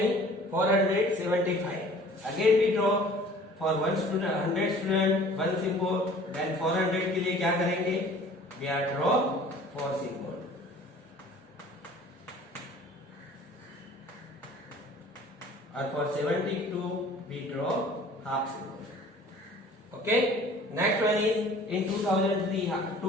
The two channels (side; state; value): both; normal; correlation 0.49